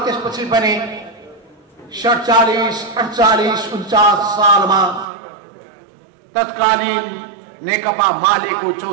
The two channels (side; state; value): left; drops out; at 5.1 s